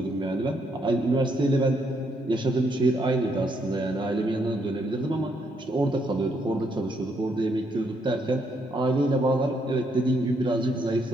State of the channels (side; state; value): both; normal; correlation 0.74